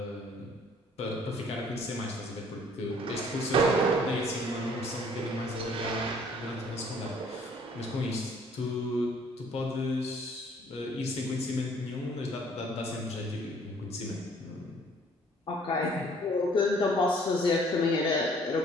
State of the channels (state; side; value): normal; both; correlation 0.58